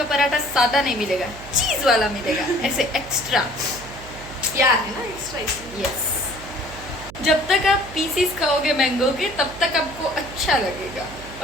पराठा सादा नहीं मिलेगा, चीज वाला मिलेगा, ऐसे एक्स्ट्रा। क्या है ना एक्स्ट्रा? यस। जब तक आप पीसीस खाओगे मैंगो के तब तक आपको अच्छा लगेगा,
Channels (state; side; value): noise; right; hum, 15 dB below the sound